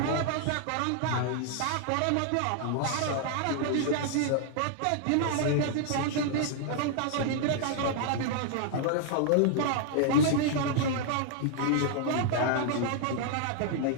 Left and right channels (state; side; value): different; both; correlation -0.01